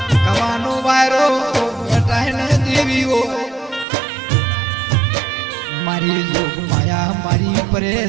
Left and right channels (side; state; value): left; drops out; at 3.9 s